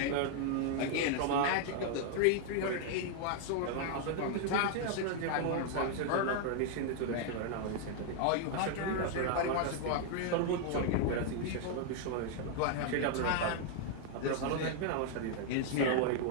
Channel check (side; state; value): both; different; correlation 0.00